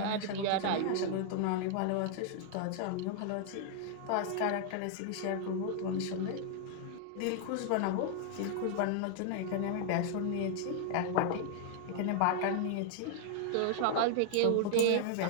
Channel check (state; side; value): different; both; correlation 0.00